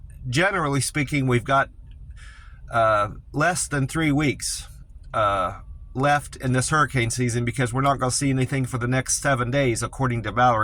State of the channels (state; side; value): identical; both; correlation 1.00